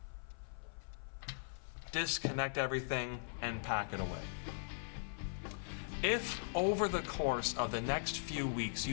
disconnect everything, and pack it away. If over the course of the next few weeks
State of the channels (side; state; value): right; silent; 51 dB below the other